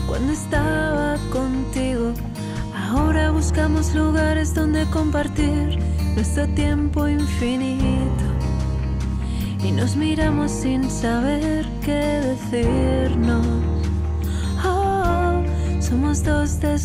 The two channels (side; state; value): both; identical; correlation 1.00